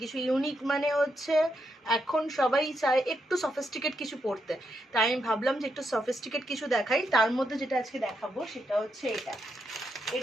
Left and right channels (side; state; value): both; normal; correlation 0.81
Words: কিছু ইউনিক মানে হচ্ছে এখন সবাই চায় একটু সফিস্টিকেট কিছু পরতে, তাই আমি ভাবলাম যে একটু সফিস্টিকেট কিছু দেখাই। তার মধ্যে যেটা আজকে দেখাবো সেটা হচ্ছে